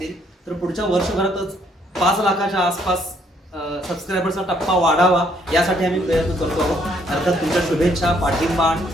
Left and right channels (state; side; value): normal; both; correlation 0.68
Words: तर पुढच्या वर्षभरातच 5 लाखाच्या आसपास सबस्क्रायबरचा टप्पा वाढावा, यासाठी आम्ही प्रयत्न करतो आहोत. अर्थात तुमच्या शुभेच्छा, पाठिंबा